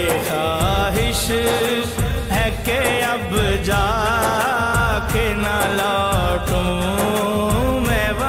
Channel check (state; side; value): identical; both; correlation 1.00